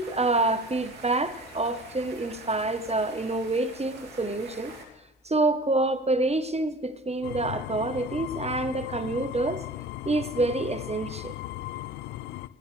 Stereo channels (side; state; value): both; normal; correlation 0.42